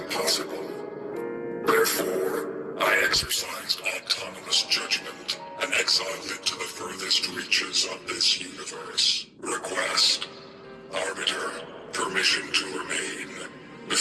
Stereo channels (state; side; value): identical; both; correlation 1.00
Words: Therefore, I exercised autonomous judgment and exiled it to the furthest reaches of this universe. Request. Arbiter, permission to remain.